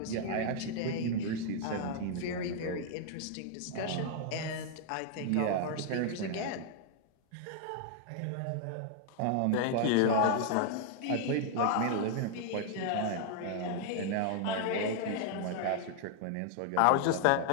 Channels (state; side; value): different; both; correlation 0.00